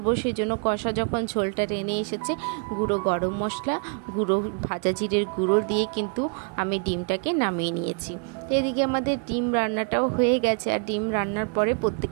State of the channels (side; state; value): left; quieter; 39.4 dB